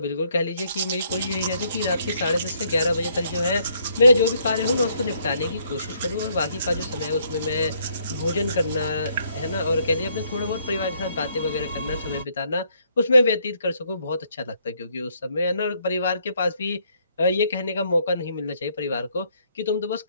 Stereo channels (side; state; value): both; inverted; correlation -0.69